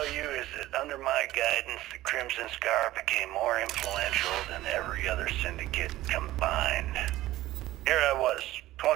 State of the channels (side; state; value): left; quieter; 15.9 dB